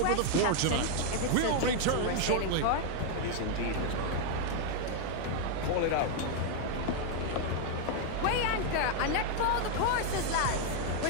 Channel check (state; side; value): different; both; correlation 0.00